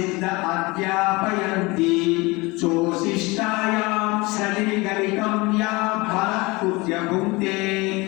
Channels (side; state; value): right; quieter; 24.1 dB